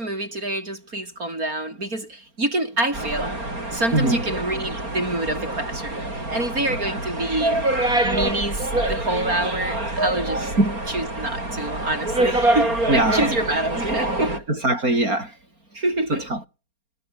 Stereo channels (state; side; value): late; left; 4.3 ms